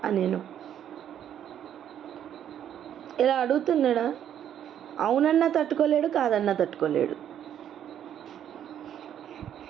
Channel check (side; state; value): left; quieter; 10.0 dB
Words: అనెను. ఇలా అడుగుతున్నాడా? అవునన్నా తట్టుకోలేడు, కాదన్నా తట్టుకోలేడు.